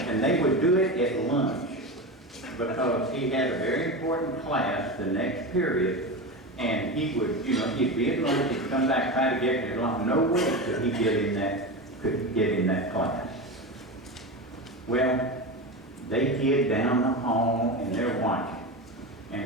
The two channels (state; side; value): normal; both; correlation 0.22